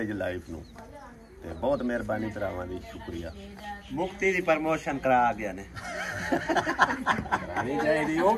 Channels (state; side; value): identical; both; correlation 1.00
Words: ਲਾਈਫ ਨੂੰ। ਤੇ ਬਹੁਤ ਮਿਹਰਬਾਨੀ ਭਰਾਵਾਂ ਦੀ, ਸ਼ੁਕਰੀਆ। ਮੁਕਤੀ ਦੀ ਪ੍ਰਮੋਸ਼ਨ ਕਰਾ ਗਿਆ ਨੇ, ਕਰਾਣੀ ਚਾਹੀਦੀ, ਉਹ